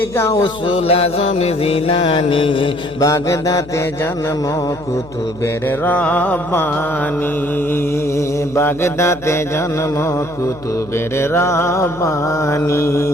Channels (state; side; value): noise; left; hum, 19 dB below the sound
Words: গাউসুল আজম জিলানী, বাগদাতে জন্ম কুতুবের রব্বানী, বাগদাতে জন্ম কুতুবের রব্বানী।